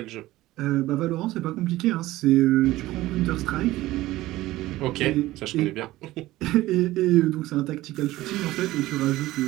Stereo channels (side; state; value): left; quieter; 16.9 dB